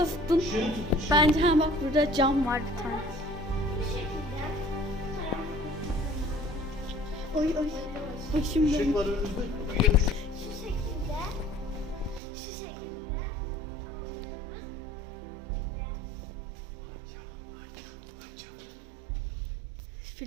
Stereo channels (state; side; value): drops out; left; at 12.2 s